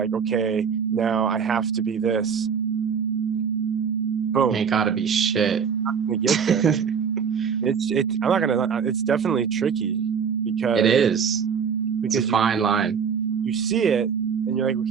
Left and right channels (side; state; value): left; quieter; 6.8 dB